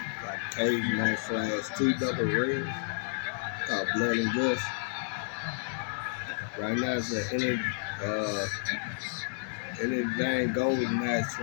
Like cage match slash two double rings called blood and guts. Right now it's an uh anything golden match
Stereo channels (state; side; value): silent; right; digital silence